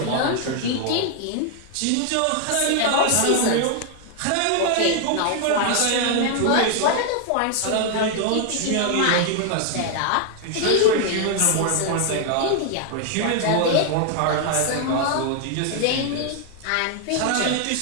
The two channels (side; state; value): both; different; correlation 0.00